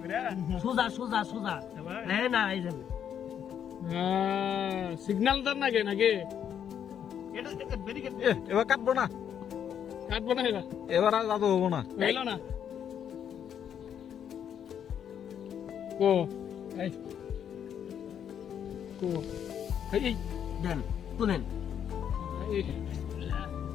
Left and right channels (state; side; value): quieter; right; 8.9 dB